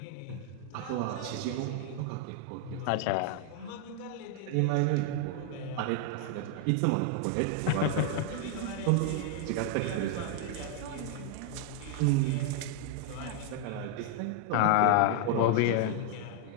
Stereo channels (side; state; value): both; different; correlation 0.00